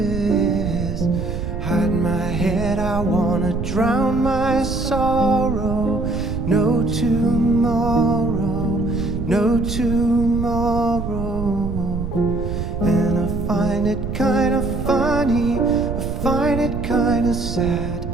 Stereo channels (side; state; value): right; noise; rumble, 5 dB below the sound